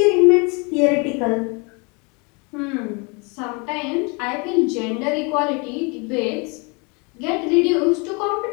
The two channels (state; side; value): quieter; right; 31.2 dB